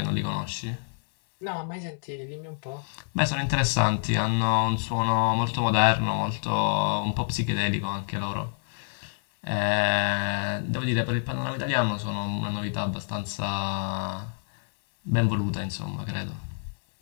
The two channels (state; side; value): silent; right; digital silence